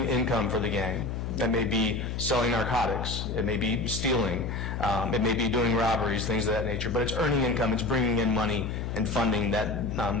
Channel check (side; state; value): left; noise; hum, 4 dB below the sound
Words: income for the gang. That may be selling narcotics, it may be stealing, it may be doing robberies, things of that nature, but it's earning income, it's bringing in money and funding that